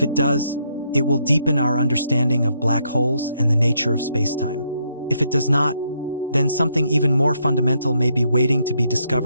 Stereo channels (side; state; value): both; inverted; correlation -0.75